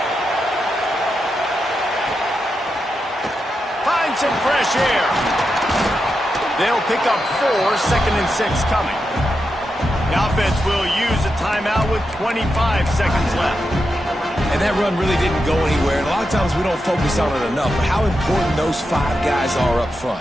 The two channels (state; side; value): normal; both; correlation 0.87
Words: Find some fresh air. They'll pick up 4, 2nd and 6 coming. The offense will use a timeout with 25 seconds left. And that run really didn't go anywhere. And a lot of times we don't focus on it enough. But how important those 5 guys are up front.